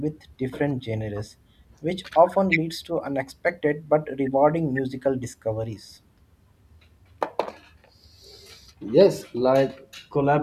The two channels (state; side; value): identical; both; correlation 1.00